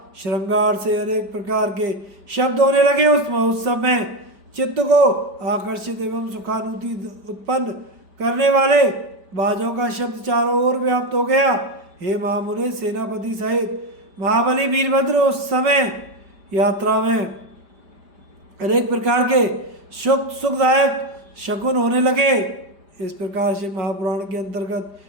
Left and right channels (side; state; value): left; late; 5.0 ms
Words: श्रृंगार से अनेक प्रकार के शब्द होने लगे। उस समय चित्त को आकर्षित एवं सुखानुभूति उत्पन्न करने वाले बाजों का शब्द चारों ओर व्याप्त हो गया। हे महामुने, सेनापति सहित महाबली वीरभद्र उस समय यात्रा में अनेक प्रकार के सुखदायक शकुन होने लगे। इस प्रकार से महापुराण के अंतर्गत